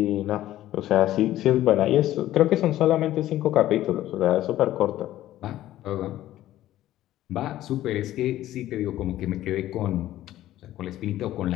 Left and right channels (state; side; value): quieter; right; 14.0 dB